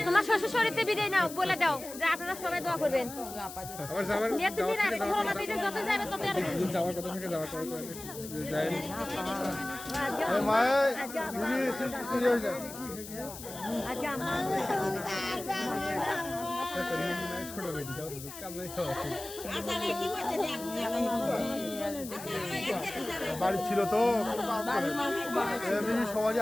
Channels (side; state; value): left; noise; hiss, 12 dB below the sound